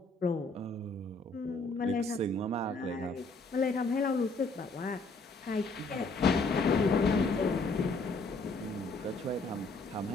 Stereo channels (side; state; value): right; quieter; 3.2 dB